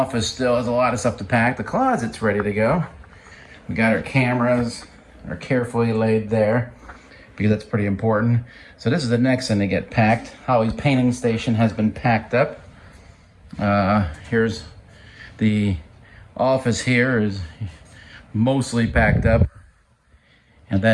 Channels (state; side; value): identical; both; correlation 1.00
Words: still has a lot of stuff to pack. The closet's ready to go. We got our cameras, are carefully laid there because that's pretty important. So this is the next thing to get packed. Holly's painting station has been packed up. Here's the office here is mostly packed up. And